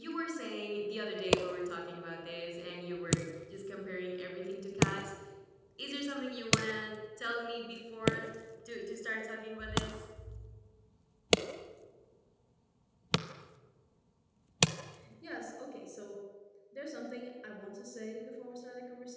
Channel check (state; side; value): identical; both; correlation 1.00